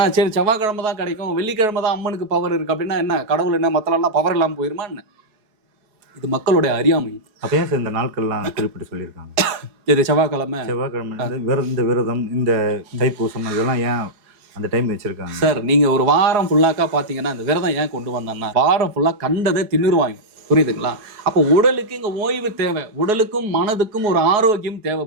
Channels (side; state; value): left; late; 4.7 ms